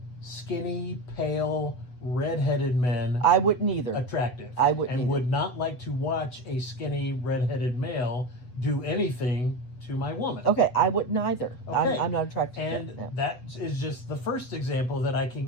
skinny, pale, redheaded men I wouldn't either. attractive. I wouldn't and either. would not like to watch a skinny, redheaded male do anything to my woman. Okay, I wouldn't either. Okay. I'm not attracted And to that. that is just the first example that I can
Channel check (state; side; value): late; right; 8.0 ms